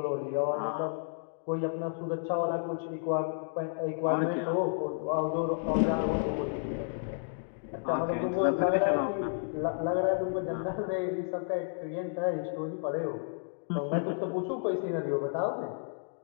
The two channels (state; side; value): silent; right; digital silence